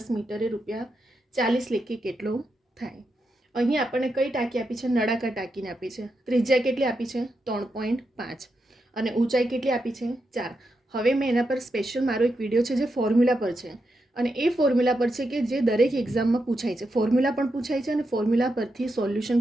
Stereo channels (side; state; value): both; normal; correlation 0.85